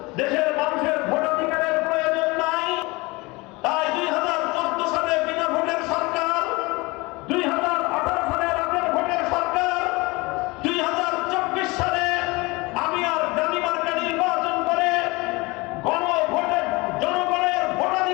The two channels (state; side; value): quieter; right; 24.2 dB